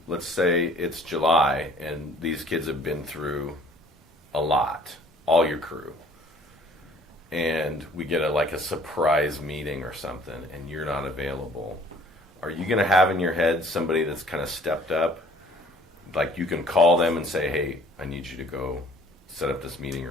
Let's say it's July and these kids have been through a lot, all your crew. And we get a surprise meeting or something, and you're not available. Are you going to have in your head somebody that's kind of stepped up? Like you can call them and say, hey, I need you to go set up this meeting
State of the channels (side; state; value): both; normal; correlation 0.54